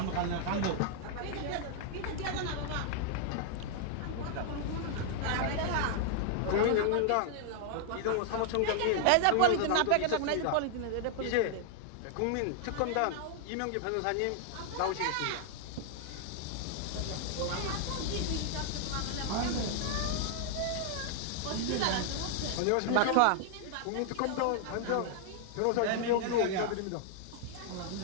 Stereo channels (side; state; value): both; different; correlation 0.00